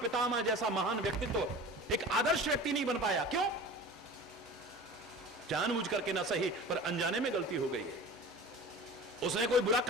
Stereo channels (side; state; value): both; normal; correlation 0.37